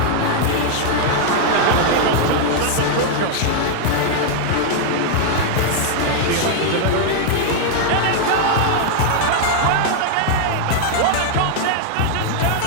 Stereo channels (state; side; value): different; both; correlation 0.00